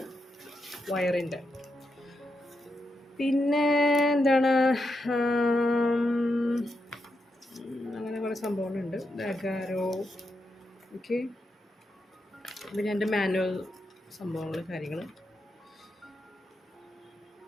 വയറിൻ്റെ. പിന്നെ എന്താണ്, അങ്ങനെ കുറേ സംഭവങ്ങളുണ്ട്. അഗാരോ. ഓക്കെ, പിന്നെ എൻ്റെ മാനുവൽ സംഭവങ്ങൾ, കാര്യങ്ങൾ.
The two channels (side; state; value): both; normal; correlation 0.84